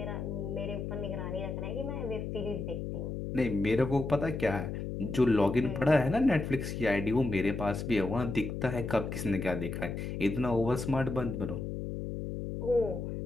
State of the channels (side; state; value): left; noise; hum, 5 dB below the sound